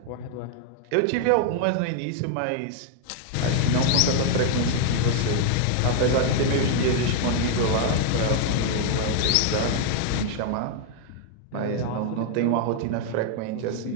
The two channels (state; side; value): different; both; correlation 0.00